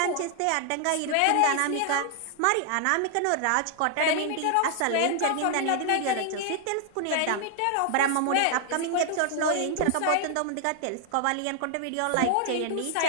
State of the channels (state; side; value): different; both; correlation 0.00